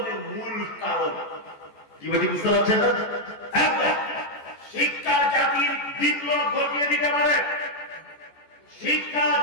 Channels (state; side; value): late; right; 14 ms